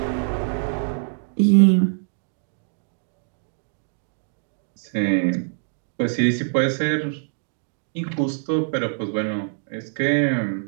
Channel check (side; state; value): left; silent; digital silence